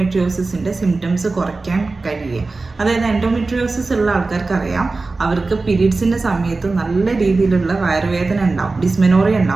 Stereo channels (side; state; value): left; quieter; 3.6 dB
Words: സിംറ്റംസ് കുറയ്ക്കാൻ കഴിയുക. അതായത് എൻഡോമെട്രിയോസിസ് ഉള്ള ആൾക്കാർക്ക് അറിയാം, അവർക്ക് പീരീഡ്സിൻ്റെ സമയത്ത് നല്ല രീതിയിലുള്ള വയറുവേദന ഉണ്ടാവും, ഡിസ്മെനോറിയ